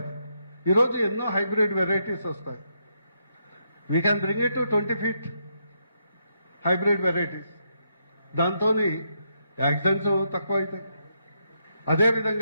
ఈరోజు ఎన్నో హైబ్రిడ్ వెరైటీస్ వస్తాయి. We can bring it to 20 feet. Hybrid varieties. దాంతో యాక్సిడెంట్స్ తక్కువ అవుతాయి.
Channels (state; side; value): inverted; both; correlation -0.79